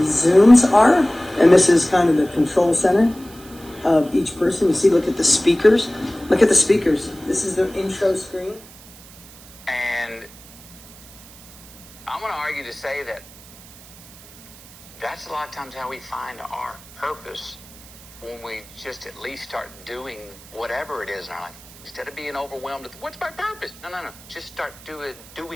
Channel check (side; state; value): right; noise; hiss, 21 dB below the sound